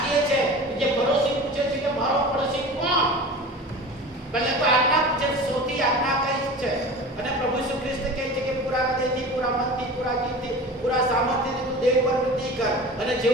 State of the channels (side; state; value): both; normal; correlation 0.36